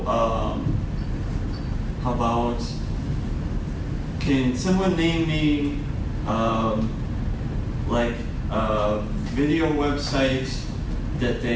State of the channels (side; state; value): both; identical; correlation 1.00